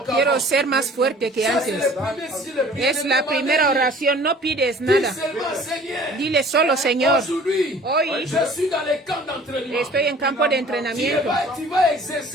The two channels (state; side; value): normal; both; correlation 0.49